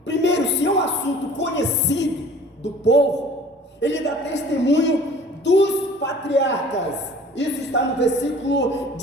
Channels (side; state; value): both; normal; correlation 0.48